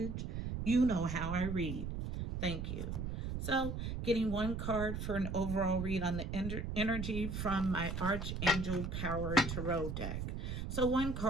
You know how I read. Thank you. So, getting one card for an overall read on the energy from my Archangel Power Tarot deck. So, one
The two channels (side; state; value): right; noise; rumble, 4 dB below the sound